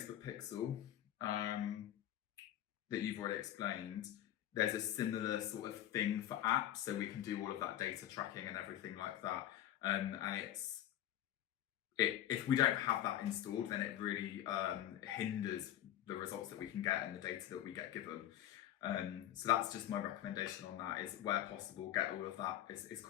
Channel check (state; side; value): quieter; right; 12.2 dB